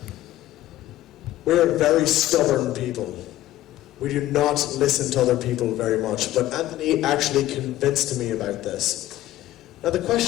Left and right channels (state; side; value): quieter; right; 14.5 dB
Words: We're very stubborn people. We do not listen to other people very much. But Anthony actually convinced me about this. Now the